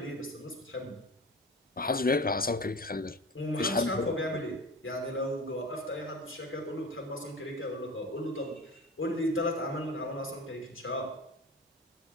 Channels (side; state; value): both; normal; correlation 0.33